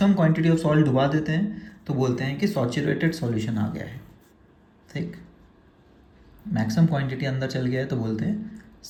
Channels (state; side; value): identical; both; correlation 1.00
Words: क्वांटिटी ऑफ सॉल्ट डुबा देते हैं तो बोलते हैं कि सैचुरेटेड सॉल्यूशन आ गया है। ठीक, मैक्सिमम क्वांटिटी अंदर चल गया है तो बोलते हैं